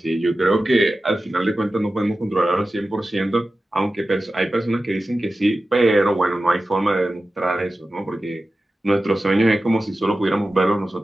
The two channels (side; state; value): both; normal; correlation 0.94